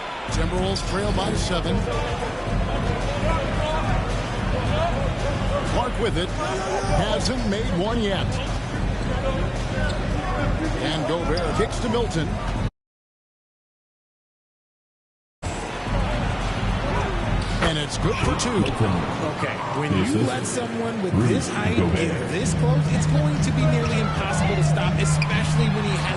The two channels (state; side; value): identical; both; correlation 1.00